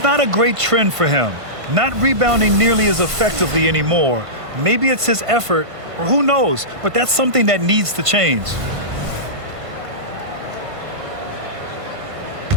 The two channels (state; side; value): late; left; 1.5 ms